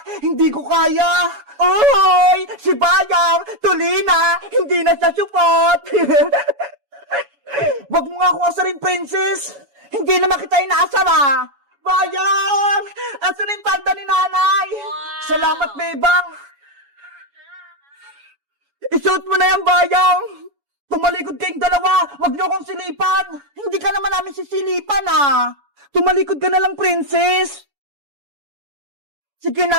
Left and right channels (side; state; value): left; late; 7.1 ms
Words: Hindi ko kaya! Oy! Si Bayang! Tuli na! Hindi na siya supot! Wag mo nga akong asarin, Princess! Hindi naman kita inaasar, ah! Bayang! Asan yung palda ni nanay? Salamat, Bebang! Isuot mo na yan, Bayang! Tumalikod kayong dalawa! Wag niyo akong silipan! Hindi ka naman namin sisilipan, ah! Tumalikod ka na lang, Princess! Sige